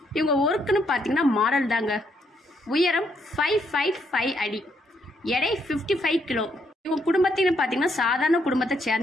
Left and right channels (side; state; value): both; normal; correlation 0.74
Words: இவங்க ஒர்க்குன்னு பார்த்தீங்கன்னா மாடல் தாங்க. உயரம் 5'5" அடி, எடை 55 கிலோ. இவங்க குடும்பத்தின்னு பார்த்தீங்கன்னா சாதாரண குடும்பத்தை